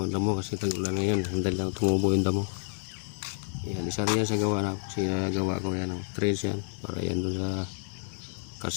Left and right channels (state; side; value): silent; right; digital silence